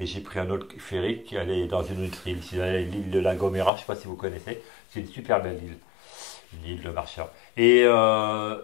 j'ai pris un autre ferry qui allait dans une autre île. Je suis allé à l'île de La Gomera, je ne sais pas si vous connaissez, c'est une super belle île, une île de marcheurs. Et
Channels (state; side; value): drops out; right; at 3.7 s